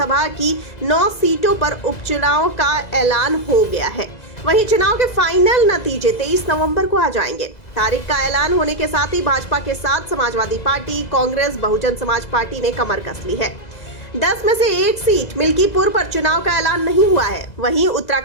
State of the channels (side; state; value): right; late; 2.0 ms